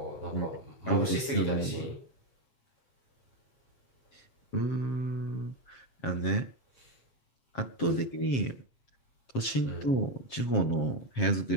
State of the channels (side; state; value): right; late; 7.5 ms